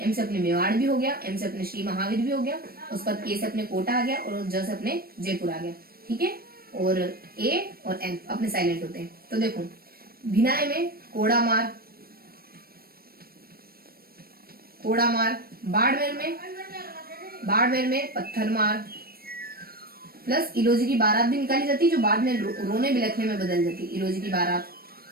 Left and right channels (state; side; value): late; left; 0.44 ms